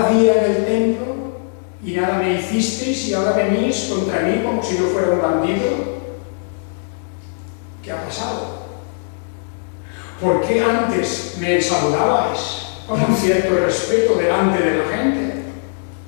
día en el templo y nada me hicisteis y ahora venís contra mí como si yo fuera un bandido. ¿Qué ha pasado? ¿Por qué antes me saludabais con un cierto respeto delante de la gente?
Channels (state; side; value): silent; right; 60 dB below the other